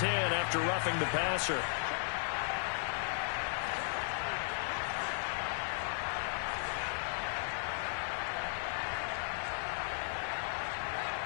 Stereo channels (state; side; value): silent; right; digital silence